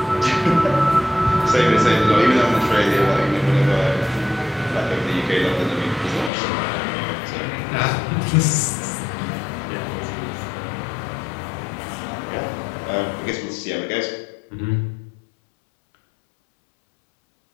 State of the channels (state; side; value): drops out; right; at 6.3 s